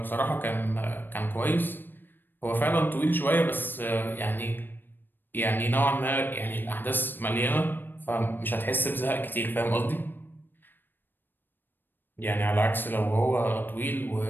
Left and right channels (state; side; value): late; right; 0.094 ms